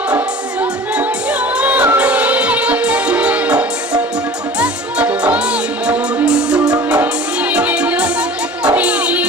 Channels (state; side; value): normal; both; correlation 0.41